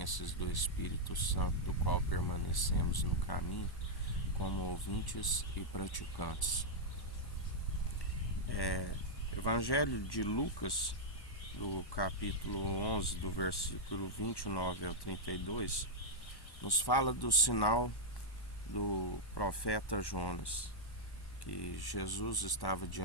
do Espírito Santo, do qual permanecemos no caminho, como ouvintes e praticantes. Evangelho de Lucas, do capítulo 11, do versículo 29 ao 32, nos fala do sinal do profeta Jonas, que Jesus estava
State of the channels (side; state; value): right; late; 1.1 ms